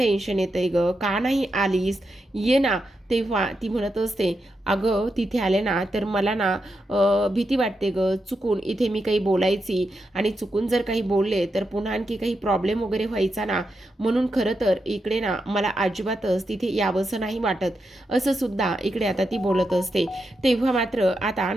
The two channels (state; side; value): normal; both; correlation 0.86